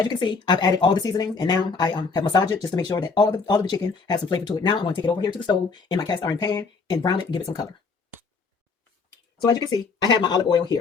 you can see, I've added all the seasoning, and now I have massaged it just to make sure that all of the chicken has some flavor to it. Now I'm going to take it over here to the stove in my cast iron pan and brown it and give it some color. So as you can see, I have my olive oil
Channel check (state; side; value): quieter; right; 4.6 dB